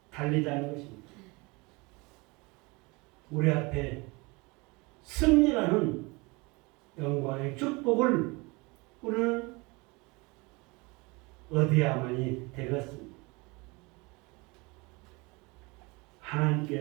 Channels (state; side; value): quieter; left; 26.1 dB